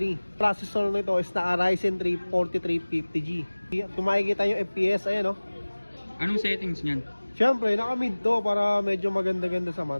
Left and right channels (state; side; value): inverted; both; correlation -1.00